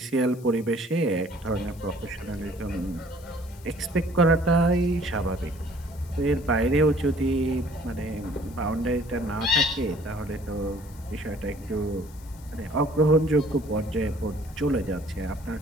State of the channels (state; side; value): noise; left; hiss, 23 dB below the sound